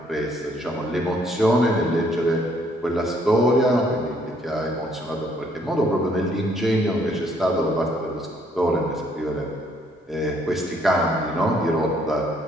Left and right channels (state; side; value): normal; both; correlation 0.66